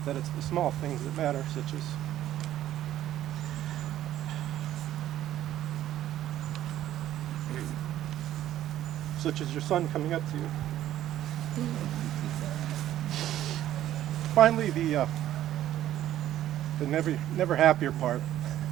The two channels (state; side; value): quieter; left; 12.6 dB